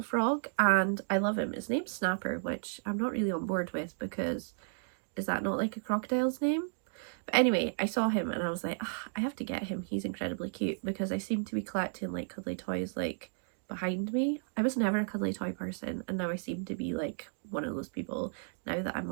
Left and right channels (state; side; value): silent; left; digital silence